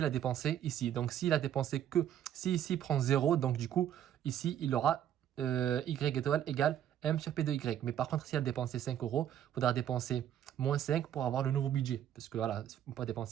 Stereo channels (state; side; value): quieter; left; 10.5 dB